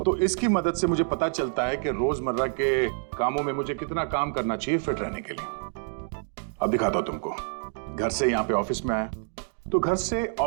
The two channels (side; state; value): left; silent; 60 dB below the other